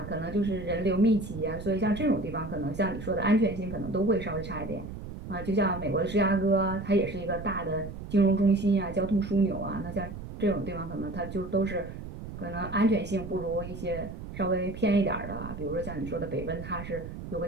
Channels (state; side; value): noise; right; rumble, 10 dB below the sound